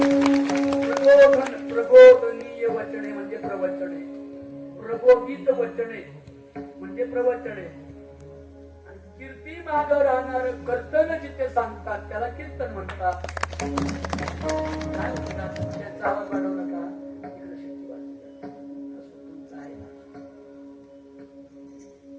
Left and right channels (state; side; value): identical; both; correlation 1.00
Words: प्रबोधनीय वचने म्हणजे प्रवचने, प्रबोधित वचने म्हणजे प्रवचने, आणि कीर्ती माग राहणार कर्तन जिथे सांगतात त्याला कीर्तन म्हणतात. काय म्हणतात? त्याचा आवाज वाढवू नका. इकडे शेती वाजते. असं तुमचं आहे ना.